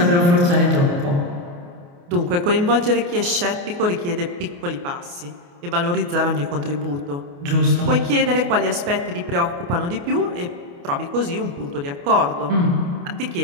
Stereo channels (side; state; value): left; late; 29 ms